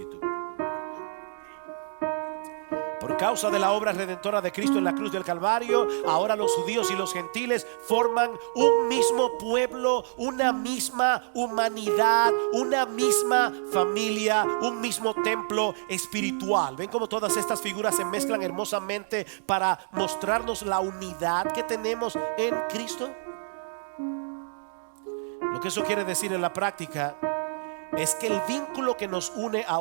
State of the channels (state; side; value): silent; left; digital silence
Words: Por causa de la obra redentora de Cristo en la cruz del Calvario, ahora los judíos y los gentiles forman un mismo pueblo, una misma humanidad, una misma familia, un mismo templo espiritual. ¿Ven cómo todas estas figuras se mezclan hermosamente para mostrarnos la unidad que tenemos en Cristo? Lo que eso quiere decir en la práctica es que el vínculo que nos une a